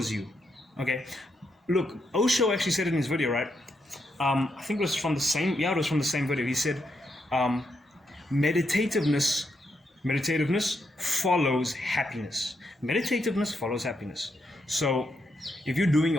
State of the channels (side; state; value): both; normal; correlation 0.80